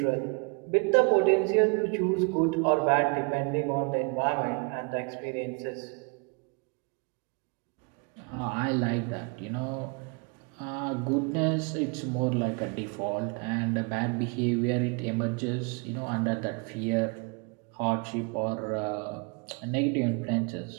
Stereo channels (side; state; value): left; quieter; 33.5 dB